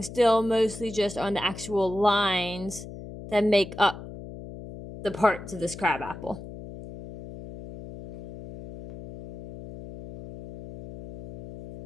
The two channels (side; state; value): left; noise; hum, 12 dB below the sound